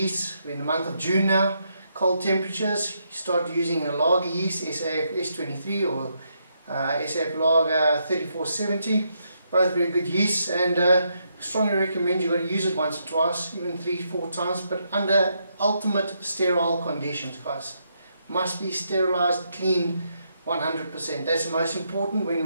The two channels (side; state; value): both; inverted; correlation -0.78